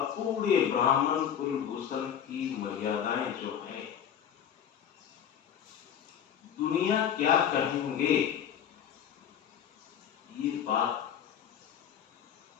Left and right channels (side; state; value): right; quieter; 8.9 dB